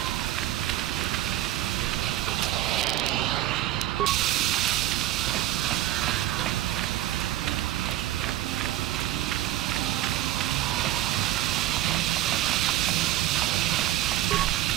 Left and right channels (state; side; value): quieter; left; 13.9 dB